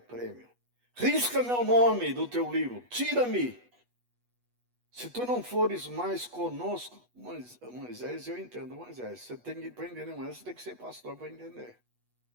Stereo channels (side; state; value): left; late; 8.2 ms